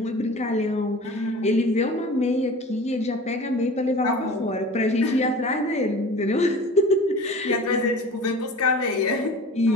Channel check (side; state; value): both; normal; correlation 0.40